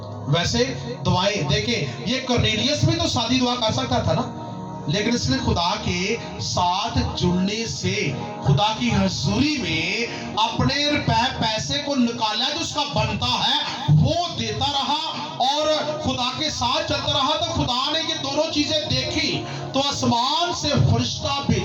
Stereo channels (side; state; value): both; identical; correlation 1.00